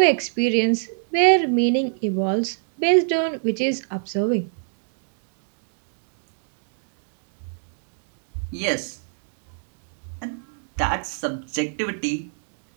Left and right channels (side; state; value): left; silent; digital silence